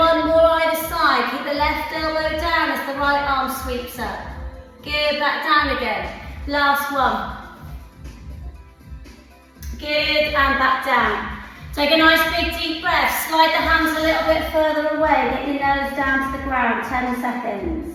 more either side. Keep the left elbow down as the right arm sweeps up. Good, back down again. Last one. Good, and back down. Take a nice big deep breath. Slide the hands a little bit further away. Get your nose down to the ground. 10 seconds.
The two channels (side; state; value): both; identical; correlation 1.00